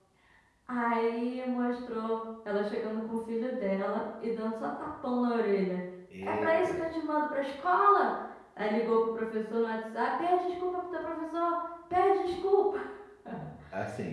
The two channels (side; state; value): both; identical; correlation 1.00